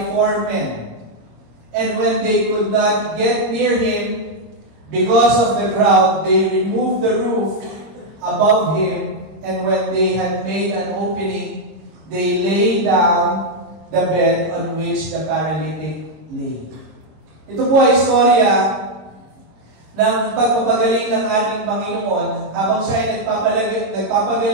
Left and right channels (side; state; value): left; late; 25 ms